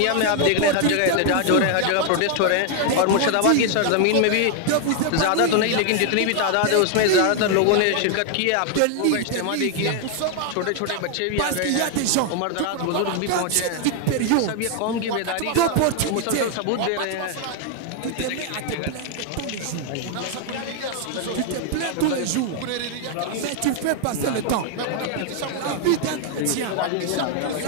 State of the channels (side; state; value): both; different; correlation 0.00